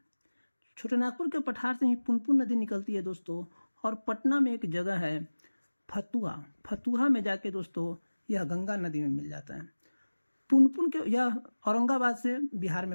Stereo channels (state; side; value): inverted; both; correlation -1.00